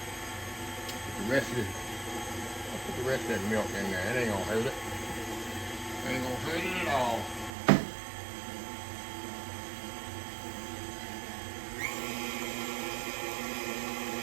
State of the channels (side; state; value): left; drops out; at 7.5 s